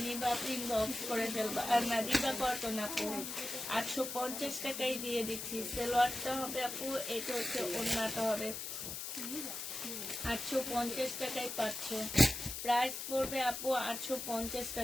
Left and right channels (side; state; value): left; noise; hiss, 6 dB below the sound